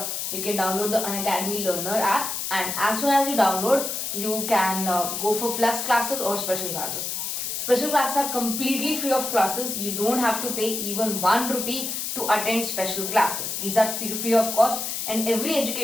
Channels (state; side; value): noise; left; hiss, 3 dB below the sound